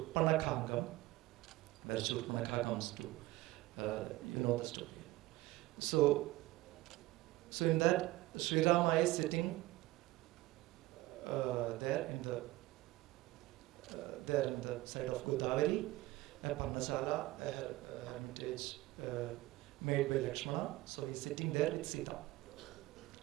where Shurpanakha comes to, you know the story. So in that, Sri Rama is sitting there in the side of Godavari, a Parnasala, a hermitage made by Lakshmana. So he's sitting there with Sita.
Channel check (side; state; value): left; quieter; 18.6 dB